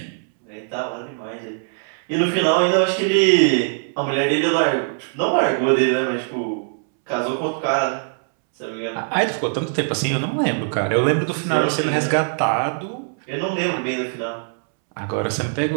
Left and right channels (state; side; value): silent; left; 65 dB below the other